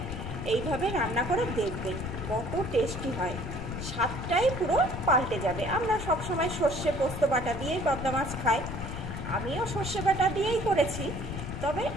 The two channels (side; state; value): left; noise; rumble, 6 dB below the sound